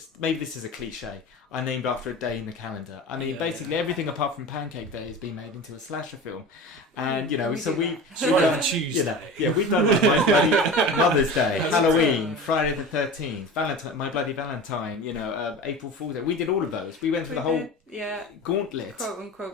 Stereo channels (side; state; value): both; normal; correlation 0.33